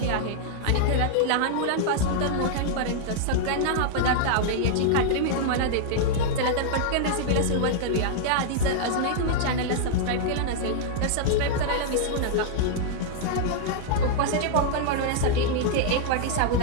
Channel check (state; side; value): different; both; correlation -0.01